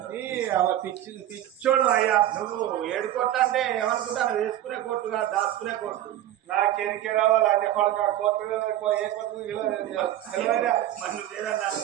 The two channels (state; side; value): quieter; left; 12.8 dB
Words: పిచ్చోడు అయ్యా నువ్వు 7 కోట్లు అంటే ఏమనుకుంటాను వేసుకునే కోర్టుగా దాచుకునే కోర్టు నాకేరికే రావాలి అన్ని కొడుకు కోర్టు ఏ కోర్టు